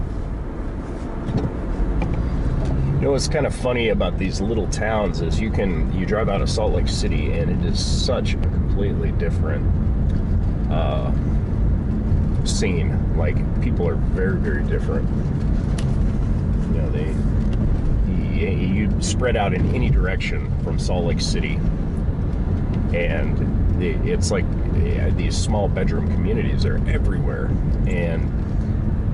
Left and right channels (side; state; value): both; identical; correlation 1.00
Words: What's kind of funny about these little towns is you drive out of Salt Lake City and it is such a completely different scene. Like, people are very, very different. You spread out in any direction from Salt Lake City, and it's like these small bedroom communities are everywhere, and